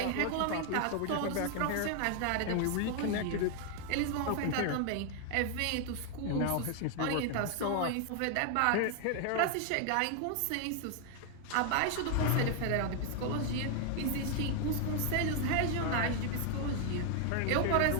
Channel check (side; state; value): both; different; correlation 0.00